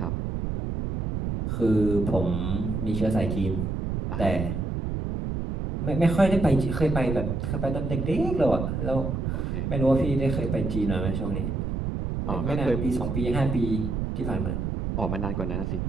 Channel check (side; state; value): right; noise; rumble, 2 dB below the sound